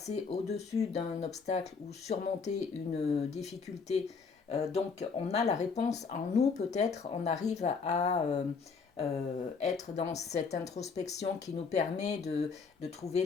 au-dessus d'un obstacle ou surmonter une difficulté. Donc on a la réponse en nous, peut-être, on arrive à être dans cette introspection qui nous permet de trouver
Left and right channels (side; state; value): right; quieter; 5.1 dB